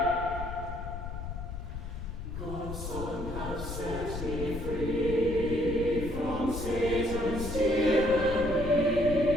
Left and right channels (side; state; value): left; noise; rumble, 7 dB below the sound